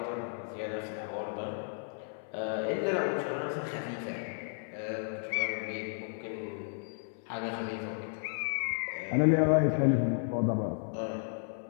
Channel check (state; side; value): silent; right; 56 dB below the other